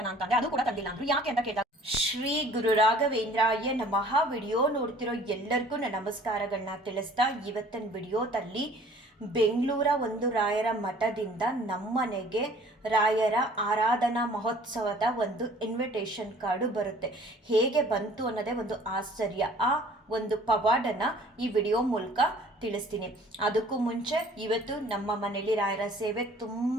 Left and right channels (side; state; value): both; normal; correlation 0.52